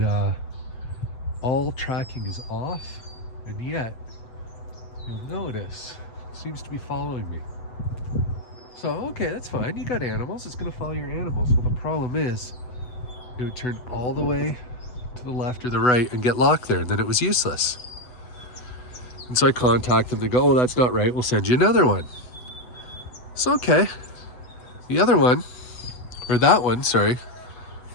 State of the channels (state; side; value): late; right; 8.0 ms